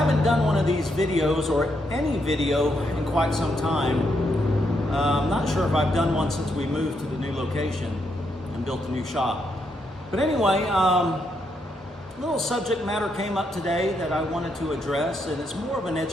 done one of these videos or any video in quite some time. I'm not sure if I've done one since we moved to the new location and built a new shop. But anyway, little subject matter came up today that I wanted to address, and it's more of an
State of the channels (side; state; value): both; normal; correlation 0.79